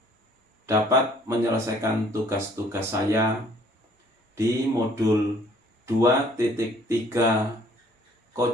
dapat menyelesaikan tugas-tugas saya di modul 2.3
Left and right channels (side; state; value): both; normal; correlation 0.58